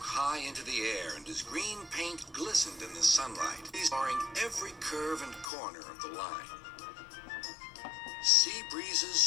high into the air, and his green paint glistened in the sunlight, exploring every curve and corner of the line. Sea breezes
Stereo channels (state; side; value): drops out; right; at 5.5 s